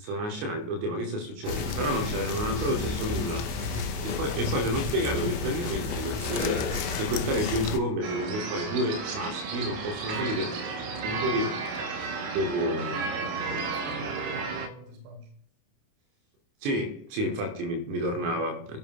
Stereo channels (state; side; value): late; left; 28 ms